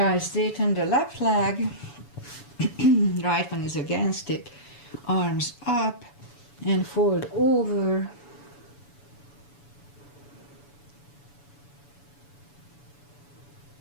straighten the left leg. Right one is against it. Arms up and fold over.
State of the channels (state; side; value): late; right; 7.0 ms